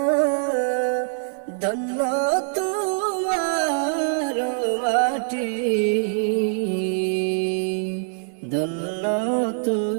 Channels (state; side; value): silent; left; 59 dB below the other